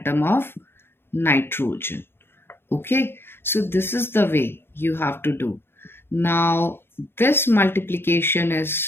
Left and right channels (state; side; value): late; right; 0.11 ms